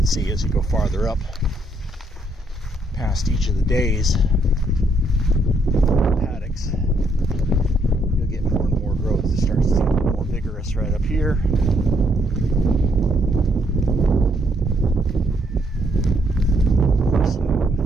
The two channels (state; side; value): normal; both; correlation 0.72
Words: see as you go farther up past each of the days paddocks, you'll get more and more growth. It starts to get a little more vigorous right up here. So